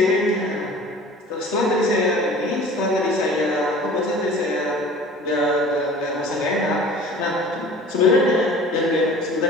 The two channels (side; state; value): both; normal; correlation 0.44